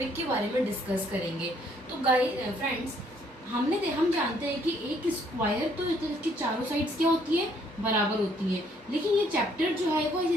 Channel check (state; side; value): normal; both; correlation 0.66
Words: के बारे में डिस्कस करेंगे। तो गाइस फ्रेंड्स, हम जानते हैं कि एक स्क्वायर तो इसकी चारों साइड्स क्या होती है, बराबर होती है, लेकिन ये चैप्टर जो है वो